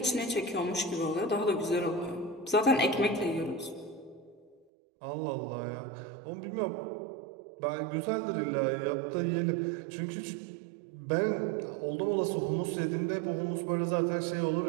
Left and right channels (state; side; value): drops out; left; at 4.6 s